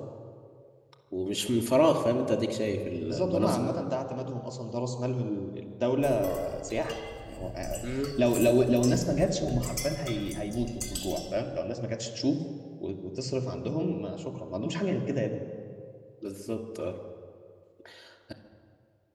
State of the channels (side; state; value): both; identical; correlation 1.00